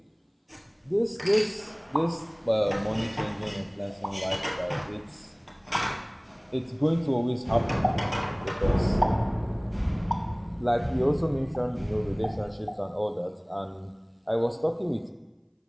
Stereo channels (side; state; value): both; identical; correlation 1.00